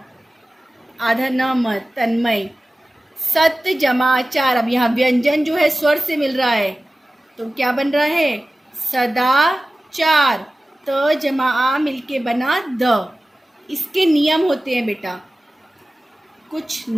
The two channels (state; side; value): normal; both; correlation 0.96